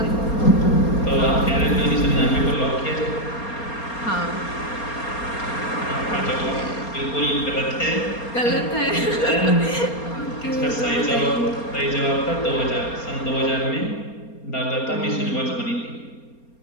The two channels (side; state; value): right; late; 4.3 ms